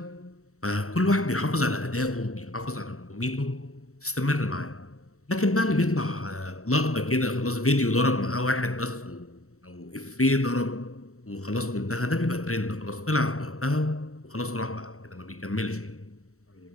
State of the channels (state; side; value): late; right; 0.64 ms